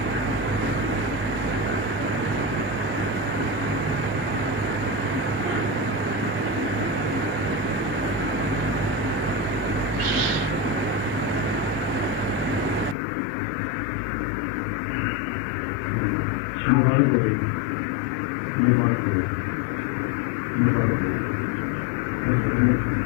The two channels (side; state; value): right; drops out; at 13.0 s